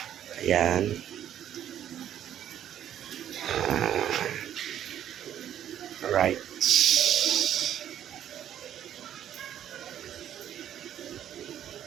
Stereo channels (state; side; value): quieter; left; 10.6 dB